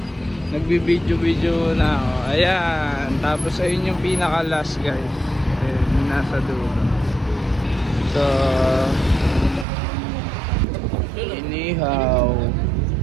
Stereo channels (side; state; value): left; drops out; at 9.7 s